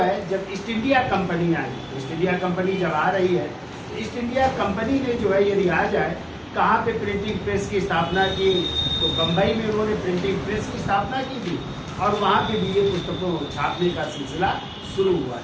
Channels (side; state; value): both; identical; correlation 1.00